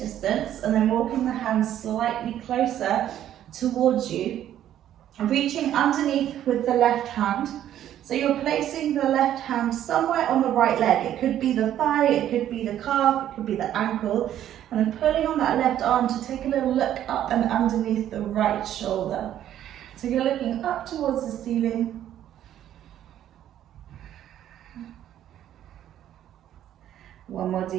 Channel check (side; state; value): left; quieter; 11.4 dB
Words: and then walking the hands slightly closer towards you. Reaching underneath with the left hand. So you're placing the left hand somewhere on the right leg. It could be the thigh, it could be the calf, it could be the ankle. And then pulling on that left arm to take a little look up and underneath the right shoulder. So you're looking up towards the ceiling. One more